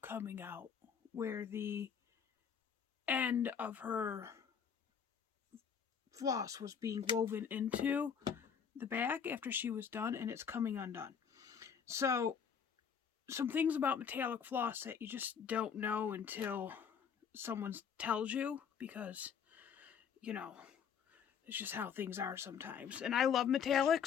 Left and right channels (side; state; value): right; quieter; 7.3 dB